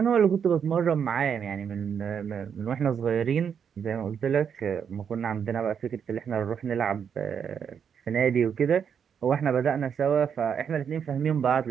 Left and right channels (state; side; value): quieter; left; 7.5 dB